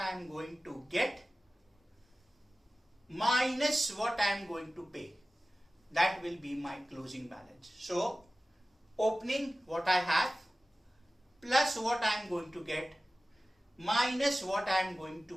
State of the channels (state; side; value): normal; both; correlation 0.96